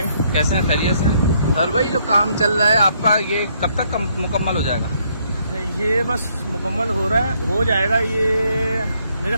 कैसे हैं, खैरियत से? सर भाई जो काम चल रहा है आपका ये कब तक मुकम्मल हो जाएगा? ये बस मुकम्मल हो रहा है, हो जाएगा ये मेरे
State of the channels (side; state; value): both; inverted; correlation -0.70